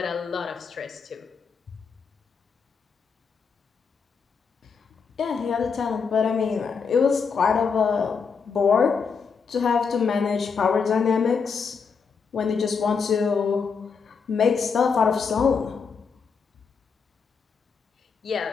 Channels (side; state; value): right; quieter; 5.7 dB